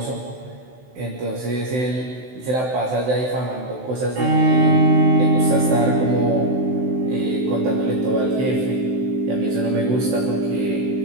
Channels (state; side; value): late; left; 16 ms